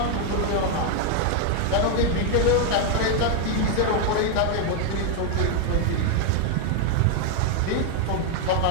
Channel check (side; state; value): both; different; correlation 0.00